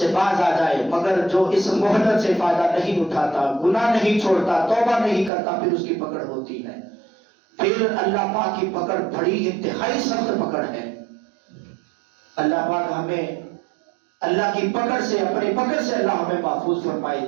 باز آ جائے۔ مگر جو اس مہلت سے فائدہ نہیں اٹھاتا، گناہ نہیں چھوڑتا، توبہ نہیں کرتا، پھر اس کی پکڑ ہوتی ہے۔ پھر اللہ پاک کی پکڑ بڑی انتہائی سخت پکڑ ہے۔ اللہ پاک ہمیں اللہ کی پکڑ سے، اپنی پکڑ سے اللہ ہمیں محفوظ فرمائے۔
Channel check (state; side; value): drops out; left; at 5.3 s